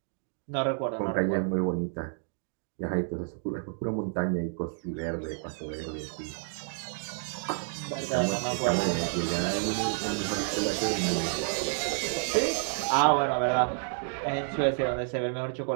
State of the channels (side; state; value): left; silent; 58 dB below the other